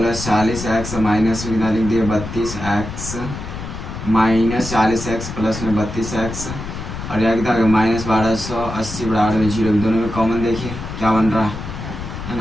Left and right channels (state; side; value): noise; left; rumble, 8 dB below the sound